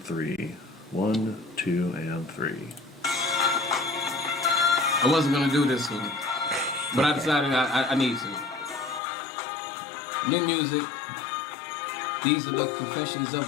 1, 2, and 3. I wasn't gonna do this one, but I decided I need to. New music. These are the confessions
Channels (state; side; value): drops out; right; at 9.0 s